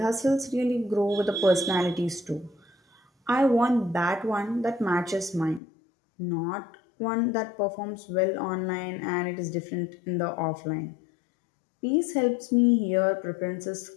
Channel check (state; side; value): drops out; right; at 5.6 s